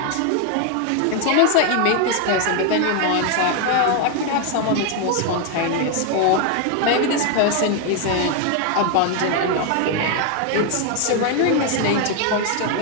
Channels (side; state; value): both; different; correlation 0.01